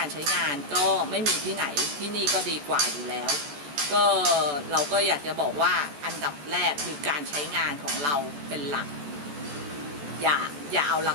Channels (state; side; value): late; left; 14 ms